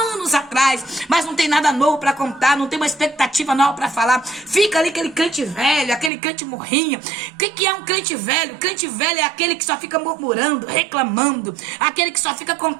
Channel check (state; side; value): drops out; left; at 6.1 s